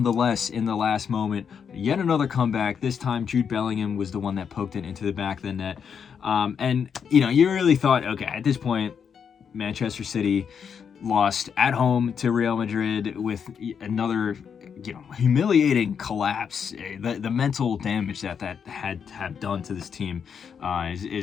in the last moment. Yet another comeback. This time Jude Bellingham was the one that poked it into the back of the net. And, you know, you really thought, okay, at this point, Manchester City lost at home to Real Madrid with another, you know, humiliating collapse. The mental damage that had done to this team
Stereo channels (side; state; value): right; quieter; 7.0 dB